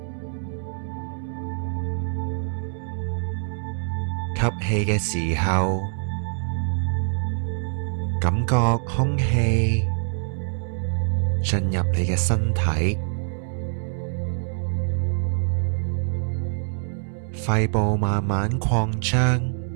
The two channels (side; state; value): left; silent; digital silence